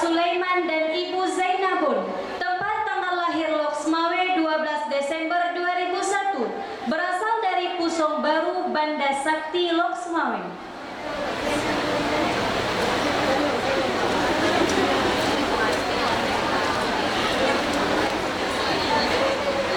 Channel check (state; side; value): identical; both; correlation 1.00